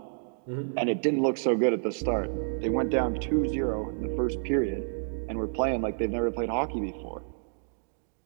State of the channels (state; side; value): silent; left; digital silence